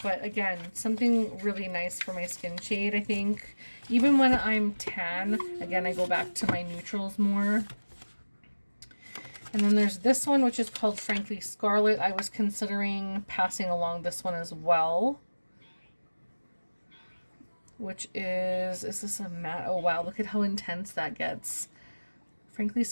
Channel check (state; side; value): inverted; both; correlation -1.00